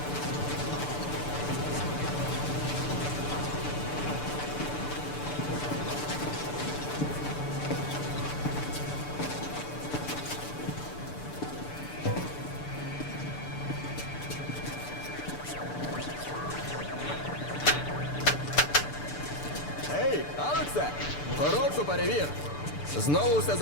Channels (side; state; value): right; late; 6.8 ms